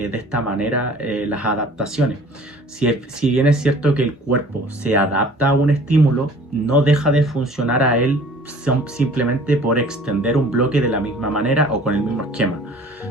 de esta manera las adaptaciones. Si bien es cierto que el cuerpo se adapta a un estímulo, no deja de funcionar a él simplemente por extender un bloque de la misma manera o con el mismo esquema.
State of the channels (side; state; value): both; normal; correlation 0.49